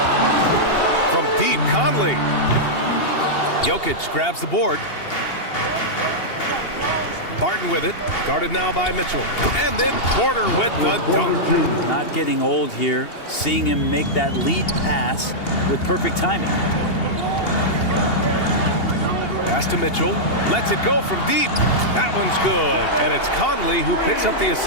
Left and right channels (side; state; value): right; late; 2.8 ms